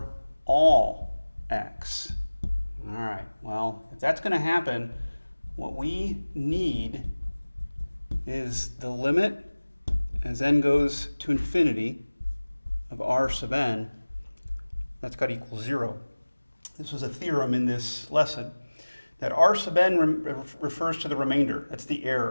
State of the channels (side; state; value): both; inverted; correlation -1.00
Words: all x. All right, well, if that's going to happen, what we need is the limit as n goes to infinity of r sub n, that's got to equal 0. This was a theorem in this lesson that r sub n refers to the remainder. That's the